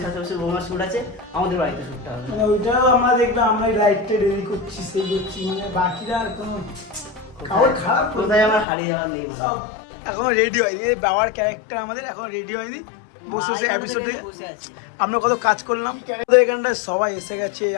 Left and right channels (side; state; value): right; drops out; at 8.7 s